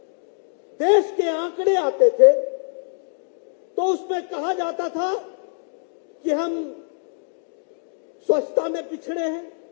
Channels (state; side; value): silent; right; digital silence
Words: देश के आंकड़े आते थे तो उसमें कहा जाता था कि हम स्वच्छता में पिछड़े हैं,